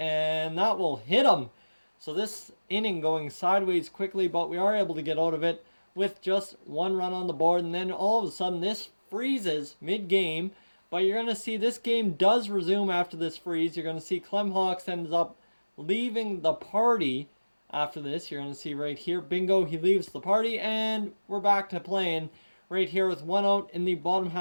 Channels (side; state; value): both; inverted; correlation -1.00